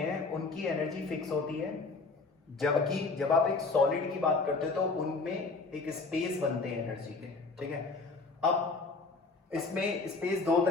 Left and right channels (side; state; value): right; quieter; 3.9 dB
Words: उनकी एनर्जी फिक्स होती है, जबकि जब आप एक सॉलिड की बात करते हो तो उनमें एक स्पेस बनते हैं एनर्जी के। ठीक है, अब इसमें स्पेस दो